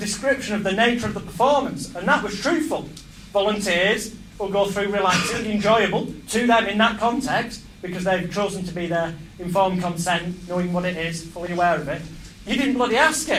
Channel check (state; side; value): identical; both; correlation 1.00